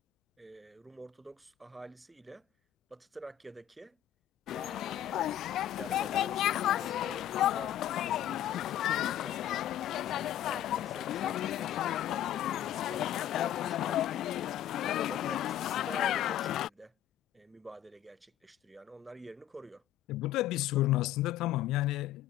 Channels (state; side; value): quieter; right; 11.9 dB